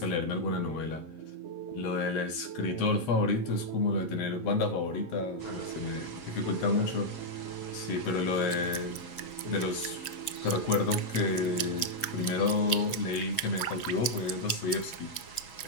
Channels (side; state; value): right; late; 8.1 ms